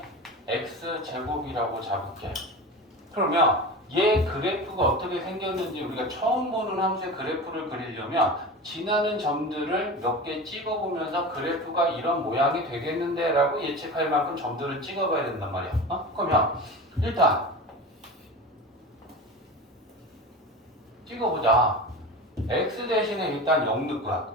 x제곱이라고 잡을게. 그러면 얘 그래프가 어떻게 생겼는지 우리가 처음 보는 함수의 그래프를 그리려면 지나는 점들을 몇 개 찍어보면서 그래프가 이런 모양이 되겠는데 라고 예측할 만큼 점들을 찍어봐야 된단 말이야. 그러면 일단 찍어보자. x 대신에 일단 0 넣을 거야.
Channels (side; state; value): both; normal; correlation 0.30